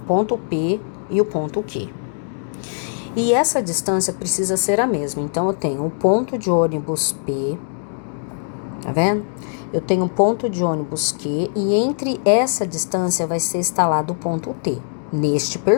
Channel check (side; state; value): right; silent; 65 dB below the other